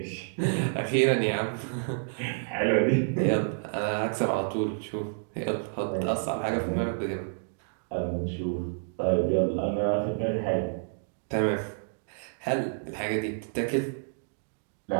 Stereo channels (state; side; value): silent; left; digital silence